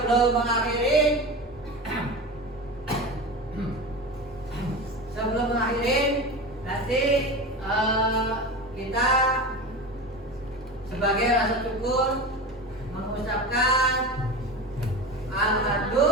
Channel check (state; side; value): normal; both; correlation 0.27